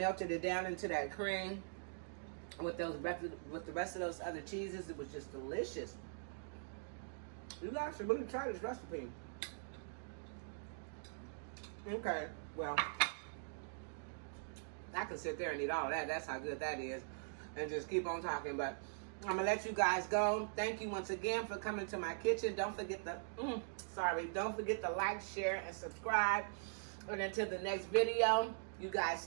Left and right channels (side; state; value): left; silent; digital silence